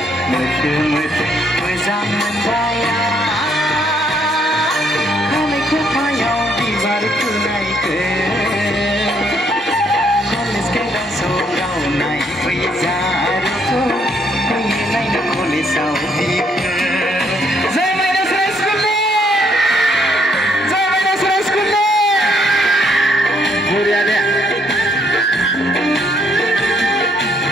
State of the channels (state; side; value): normal; both; correlation 0.69